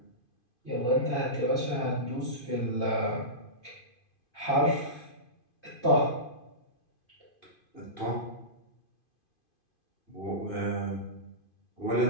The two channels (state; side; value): late; right; 2.5 ms